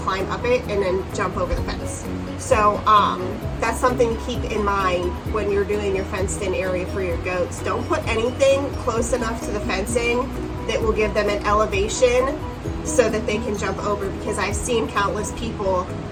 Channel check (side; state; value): both; identical; correlation 1.00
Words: up it and then jump over the fence. So that's something to keep in mind when you're doing your fenced in area for your goats. Don't put anything close enough to the fencing that will give them an elevation so that they can jump over, because I've seen countless people